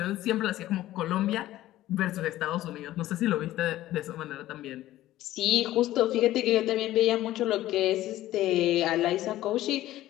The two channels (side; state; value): right; quieter; 14.8 dB